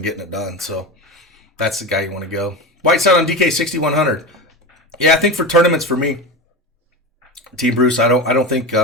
getting it done. So that's the guy you want to go. Whiteside on DK 6,100. Yeah, I think for tournaments for me, Team Bruce, I don't think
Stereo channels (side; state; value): both; normal; correlation 0.23